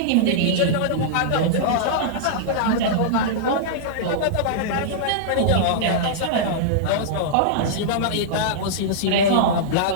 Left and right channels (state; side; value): different; both; correlation -0.02